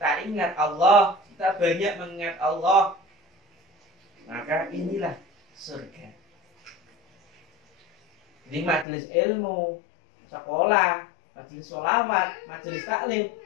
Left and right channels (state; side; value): drops out; right; at 8.8 s